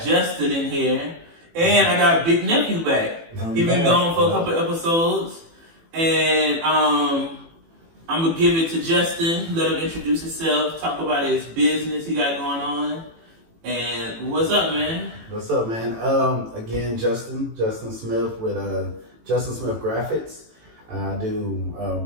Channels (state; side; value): late; left; 18 ms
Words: Justin in here, and I got Big Nephew back. He's been gone for a couple episodes, and I'm gonna give it to Justin. Let him introduce himself, talk about his business he got going on, and what's up, man? What's up, man? Again, Justin Smith with Justin Smith Graphics. I do